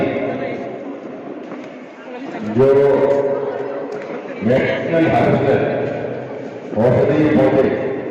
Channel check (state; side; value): identical; both; correlation 1.00